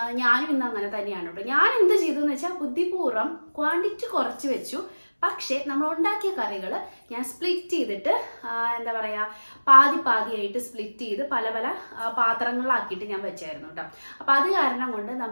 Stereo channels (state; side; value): inverted; both; correlation -1.00